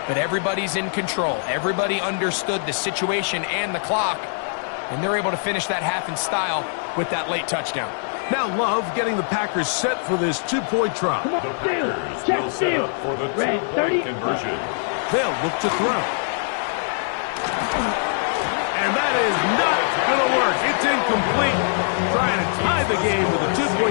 but everybody's in control. Everybody understood the situation and the clock, and they're able to finish that half in style with that late touchdown. Now Love getting the Packers set for this two-point try. The Packers will set up for the two-point conversion. They'll look to throw. And that is not going to work. It's incomplete. Trying to tie the game with a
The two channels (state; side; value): silent; right; digital silence